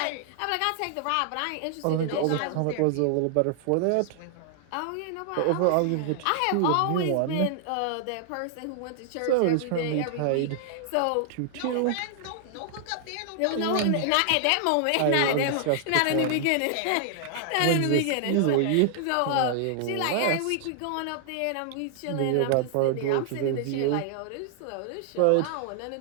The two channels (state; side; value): different; both; correlation 0.00